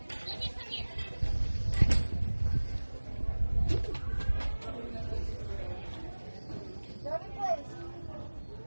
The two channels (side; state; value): both; inverted; correlation -1.00